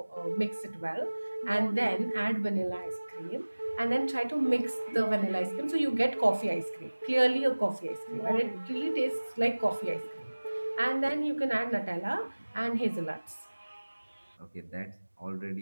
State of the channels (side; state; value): both; inverted; correlation -1.00